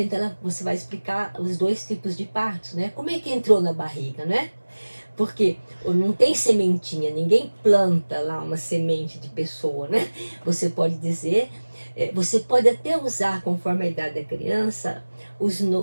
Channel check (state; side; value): inverted; both; correlation -1.00